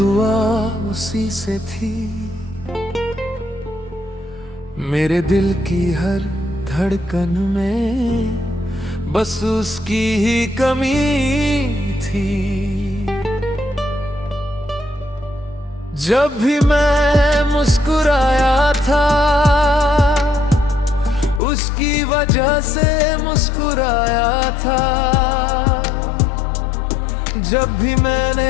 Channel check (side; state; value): right; drops out; at 21.4 s